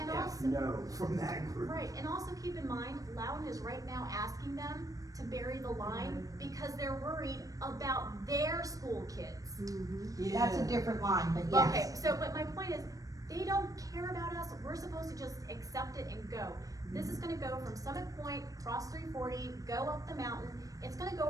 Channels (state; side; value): late; left; 0.17 ms